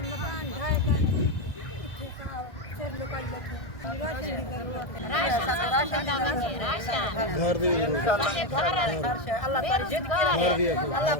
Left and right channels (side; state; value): right; late; 1.6 ms